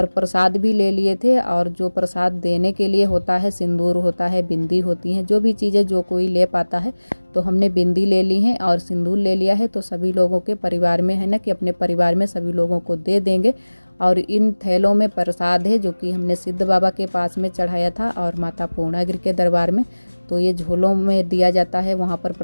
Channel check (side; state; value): both; inverted; correlation -1.00